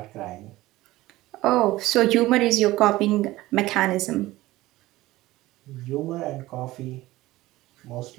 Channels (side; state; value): left; quieter; 17.6 dB